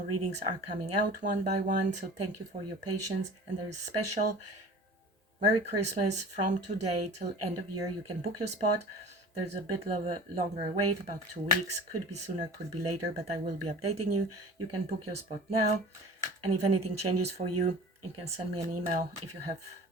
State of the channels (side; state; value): both; normal; correlation 0.40